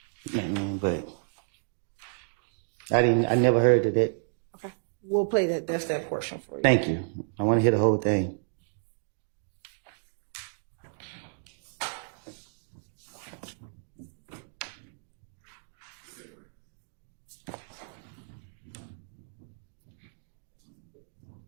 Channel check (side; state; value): left; silent; digital silence